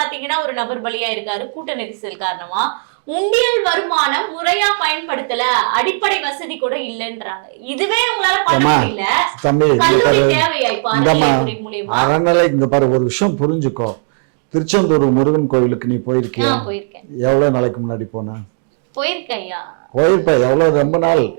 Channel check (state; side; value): silent; left; digital silence